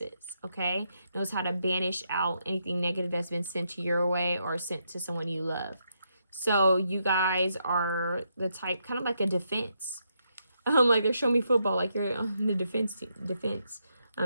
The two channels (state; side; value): inverted; both; correlation -0.80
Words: okay? Knows how to banish out anything negative that's been sent to your way or sent to someone you love. So you guys are the type, kind of like a defense. Like they're showing me football, like you're on the defense